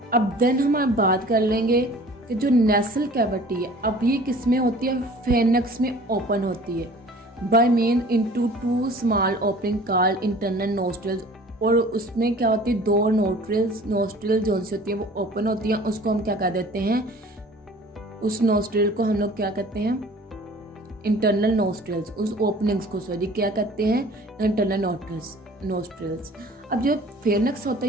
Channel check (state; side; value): normal; both; correlation 0.47